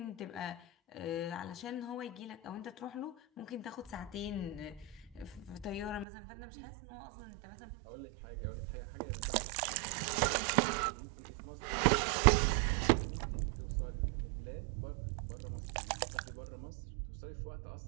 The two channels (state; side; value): drops out; left; at 6.1 s